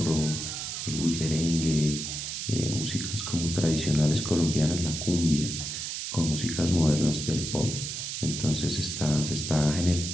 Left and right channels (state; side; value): noise; right; hiss, 5 dB below the sound